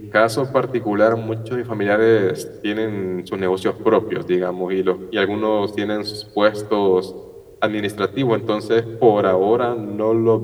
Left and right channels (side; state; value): both; identical; correlation 1.00